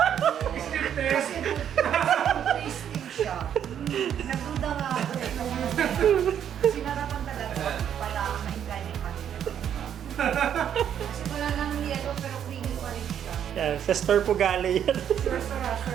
Still test. Kasi food tasting siya. Nagduda nga ako eh. Sinarapan talaga para mainggan yung kanila. Kasi wala nang yellow pero creamy pa rin siya. Yan. Sa store po galing yan. Sure talaga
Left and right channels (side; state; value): left; quieter; 9.3 dB